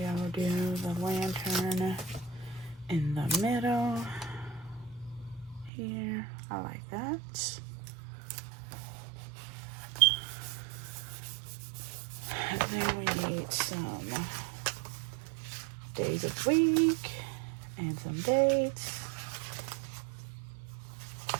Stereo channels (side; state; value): left; drops out; at 5.7 s